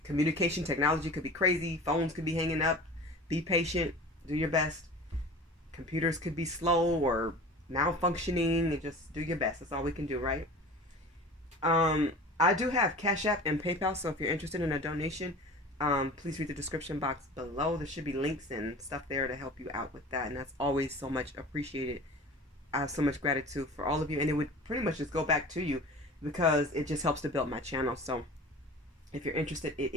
communication technology could be crazy. Phones could be hanging up. Be patient. Do your best. Computers could be slow or malfunctioning. And just do your best. That's all we can do, right? I do have CashApp and PayPal, so if you're interested in a donation, please read the description box below. There should be links and stuff there to help you out with that, and that's always so much appreciated. I have so much gratitude for all of you, and it would pretty much just go back to you because it just helps to build my channel. So if you're interested, it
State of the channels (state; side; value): normal; both; correlation 0.38